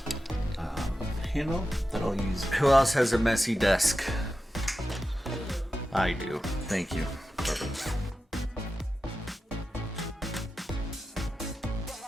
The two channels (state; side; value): normal; both; correlation 0.91